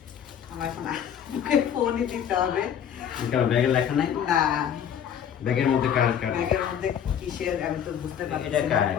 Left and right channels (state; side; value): quieter; right; 8.8 dB